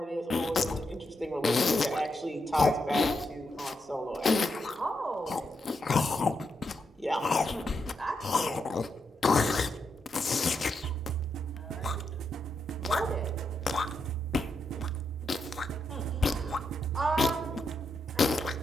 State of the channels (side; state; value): both; normal; correlation 0.83